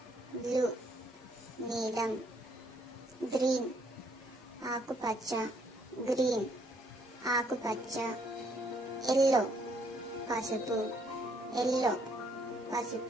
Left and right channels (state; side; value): normal; both; correlation 0.68